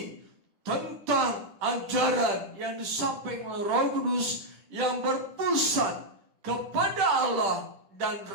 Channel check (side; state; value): left; late; 10 ms